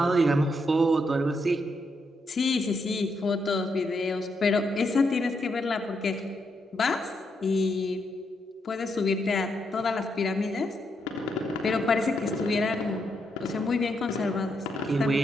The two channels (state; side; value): normal; both; correlation 0.80